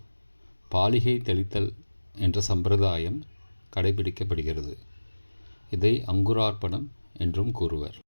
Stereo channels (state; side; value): inverted; both; correlation -1.00